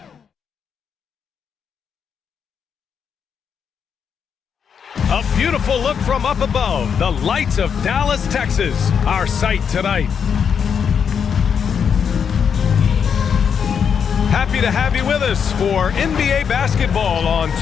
A beautiful look from up above, the lights of Dallas, Texas, our sight tonight. Happy to have you with us for NBA basketball on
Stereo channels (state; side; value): quieter; right; 7.1 dB